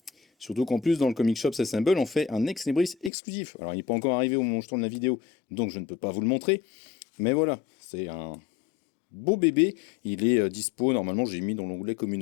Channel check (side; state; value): right; drops out; at 3.1 s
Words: Surtout qu'en plus, dans le Comic Shop Assemble, on fait un ex libris exclusif. Alors, il n'est pas encore arrivé au moment où je tourne la vidéo, donc je ne peux pas vous le montrer. Mais voilà, c'est un beau bébé. Il est dispo, normalement, j'ai mis dans l'onglet